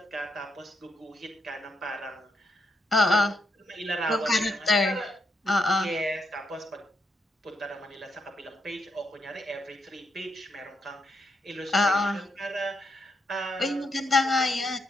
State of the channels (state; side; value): normal; both; correlation 0.79